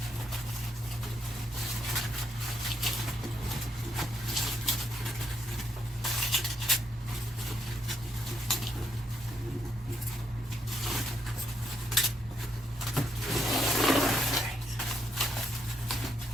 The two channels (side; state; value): both; normal; correlation 0.77